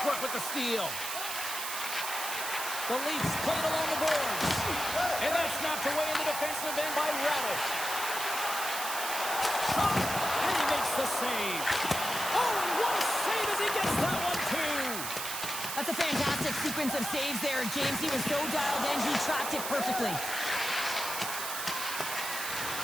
work with the steal. The Leafs play it along the boards. And that's snapped away in the defensive end by Radish. Shot! And he makes the save. Oh, and what a save as he gets that one, too! That's a fantastic sequence of saves there, James. He was so dialed in, he tracked it perfectly.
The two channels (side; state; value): right; noise; hiss, 4 dB below the sound